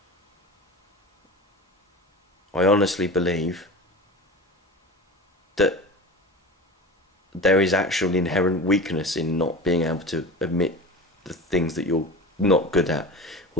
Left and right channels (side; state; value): both; normal; correlation 0.32